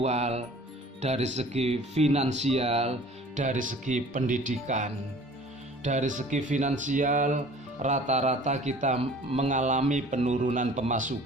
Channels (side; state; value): both; normal; correlation 0.48